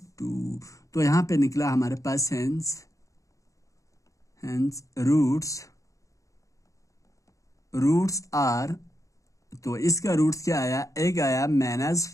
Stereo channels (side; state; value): right; late; 0.16 ms